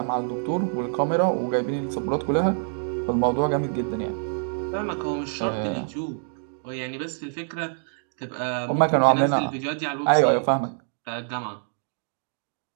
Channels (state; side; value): silent; left; 61 dB below the other